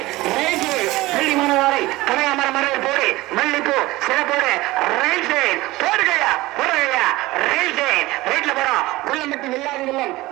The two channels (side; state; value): left; quieter; 19.3 dB